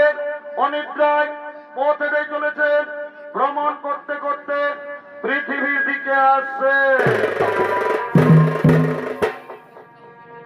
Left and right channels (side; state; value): both; identical; correlation 1.00